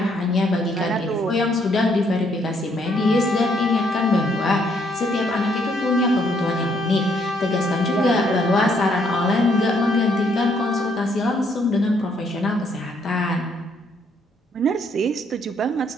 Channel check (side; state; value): both; normal; correlation 0.70